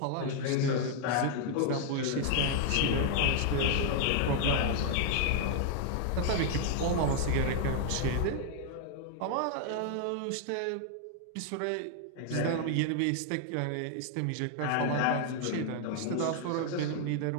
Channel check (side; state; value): both; different; correlation 0.00